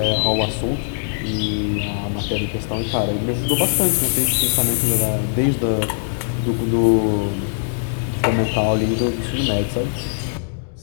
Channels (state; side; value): silent; right; digital silence